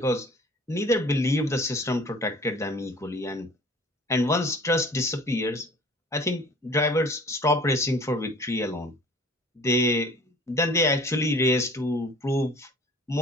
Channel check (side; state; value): both; normal; correlation 0.48